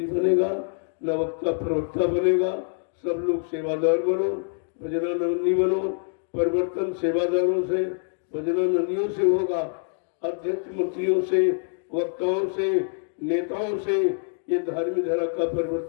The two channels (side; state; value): right; silent; 61 dB below the other